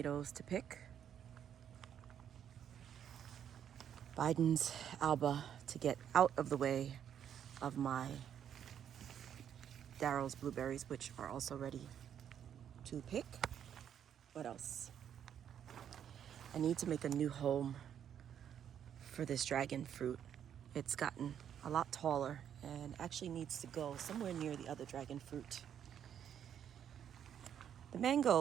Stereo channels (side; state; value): left; quieter; 9.2 dB